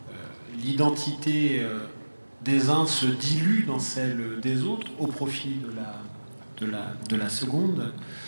l'identité des uns se dilue dans celle des autres au profit de la seconde,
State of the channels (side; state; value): both; inverted; correlation -1.00